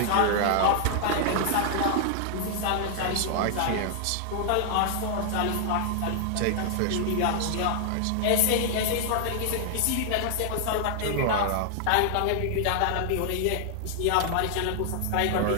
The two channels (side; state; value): both; different; correlation 0.00